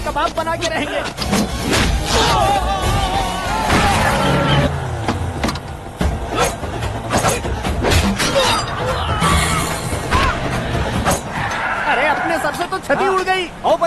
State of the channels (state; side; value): identical; both; correlation 1.00